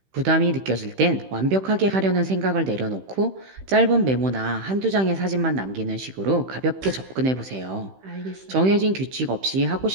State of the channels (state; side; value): late; left; 15 ms